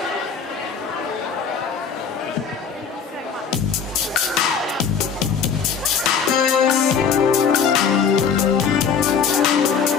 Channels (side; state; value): right; quieter; 6.5 dB